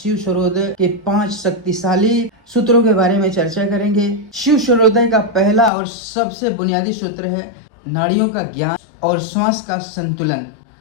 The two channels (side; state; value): right; drops out; at 5.7 s